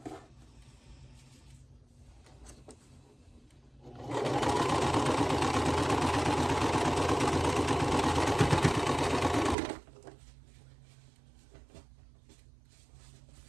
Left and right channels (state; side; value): drops out; left; at 9.6 s